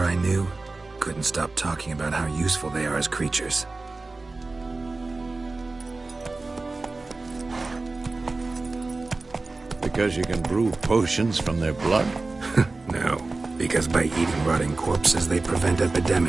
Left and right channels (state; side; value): quieter; left; 3.5 dB